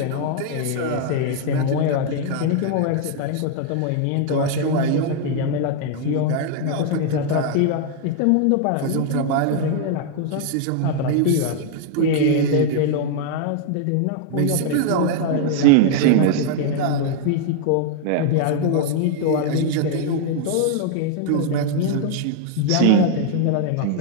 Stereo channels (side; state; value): both; different; correlation 0.00